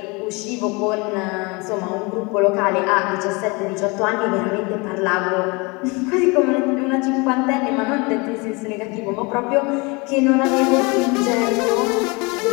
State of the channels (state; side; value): quieter; right; 27.4 dB